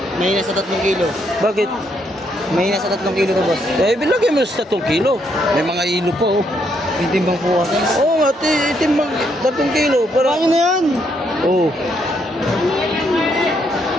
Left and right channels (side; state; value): both; normal; correlation 0.74